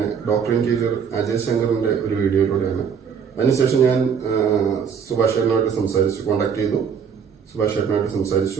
doctor interior Ajay ശങ്കറിന്റെ ഒരു വീഡിയോയിലൂടെയാണ്. അതിനുശേഷം ഞാൻ സുഭാഷ് ചേട്ടനുമായിട്ട് സംസാരിച്ചു, കോൺടാക്ട് ചെയ്തു. സുഭാഷ് ചേട്ടനുമായിട്ട്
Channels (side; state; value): left; quieter; 7.0 dB